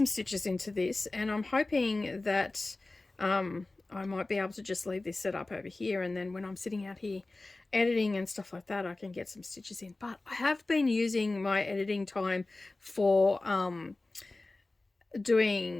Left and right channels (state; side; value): quieter; right; 3.1 dB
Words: stitches into this, and I'm hoping that I might be able to just leave this set up over here, and then when I'm sitting out here editing and stuff like that, I can get some stitches in. But I have been using my editing time for